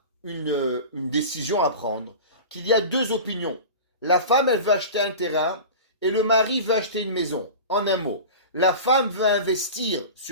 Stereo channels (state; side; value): inverted; both; correlation -0.33